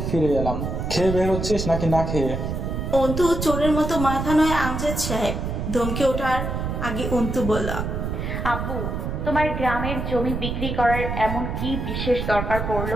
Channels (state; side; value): noise; right; rumble, 3 dB below the sound